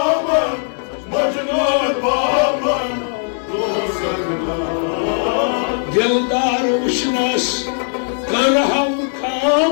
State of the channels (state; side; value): silent; right; 67 dB below the other